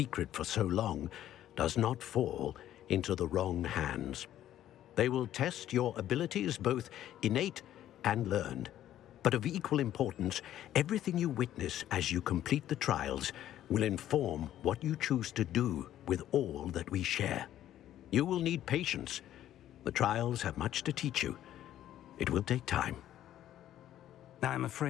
for so long does not fall into the wrong hands. They will test your abilities, both innate and learned. But of equal importance, everything you witness as you complete the trials will inform what you choose to do with all that we share. You will need patience. The trials have much to teach you. It will take time. I'm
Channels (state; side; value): quieter; right; 12.2 dB